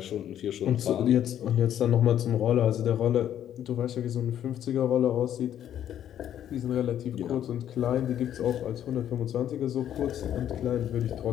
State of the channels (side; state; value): right; quieter; 10.6 dB